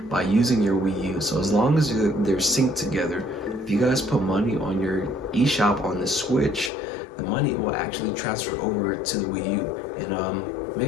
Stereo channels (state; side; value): drops out; right; at 6.7 s